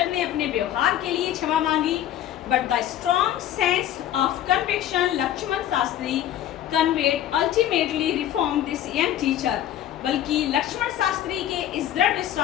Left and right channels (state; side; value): quieter; right; 11.8 dB